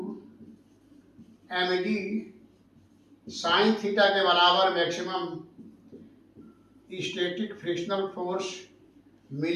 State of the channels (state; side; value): identical; both; correlation 1.00